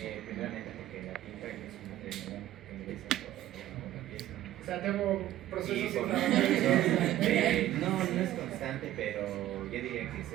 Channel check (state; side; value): quieter; left; 13.8 dB